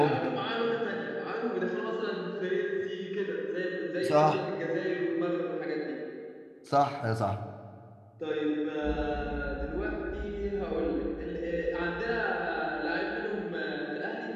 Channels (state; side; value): identical; both; correlation 1.00